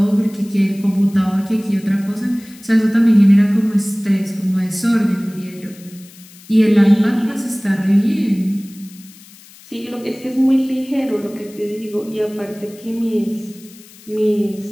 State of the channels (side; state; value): left; noise; hiss, 23 dB below the sound